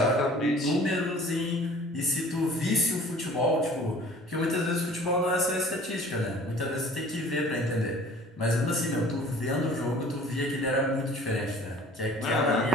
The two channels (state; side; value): normal; both; correlation 0.48